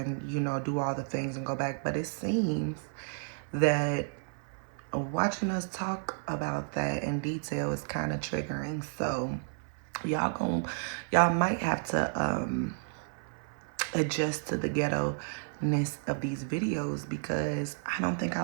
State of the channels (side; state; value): left; silent; 56 dB below the other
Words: do all the things and go back, but it seems that watching us talk about that in detail is kind of triggering. So y'all might have to adjust to the ghetto-ness of these videos because I don't think I